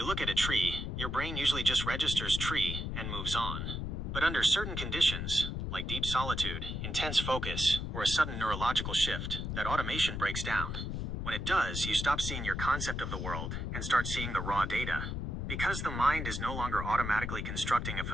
look at a tree, your brain usually just registers tree and moves on. But under certain conditions, like deep solitude, intense focus, or a sudden neurological shift, that automation breaks down. When it does, you stop seeing your concept of the world and start seeing the raw data. Because the mind is no longer automatically constructing a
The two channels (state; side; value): noise; left; rumble, 3 dB below the sound